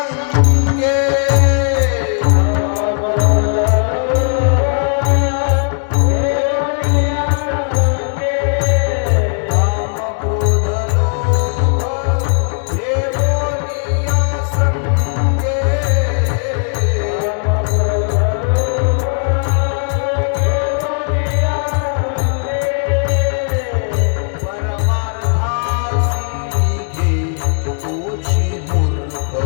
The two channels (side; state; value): right; silent; 67 dB below the other